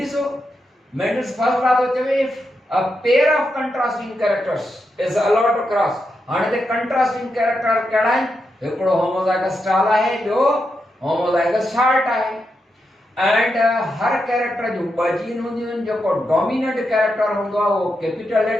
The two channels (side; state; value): both; normal; correlation 0.85